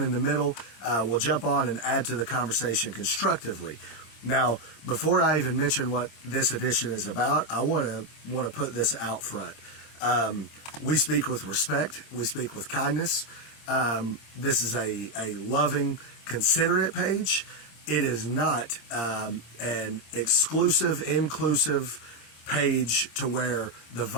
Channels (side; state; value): right; late; 26 ms